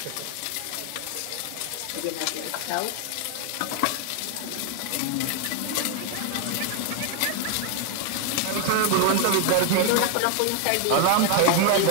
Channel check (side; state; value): both; different; correlation 0.00